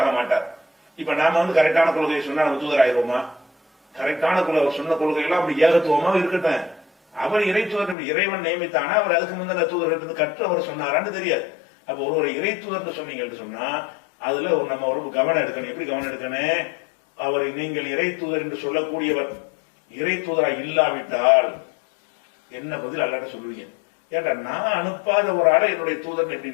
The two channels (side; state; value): right; drops out; at 8.0 s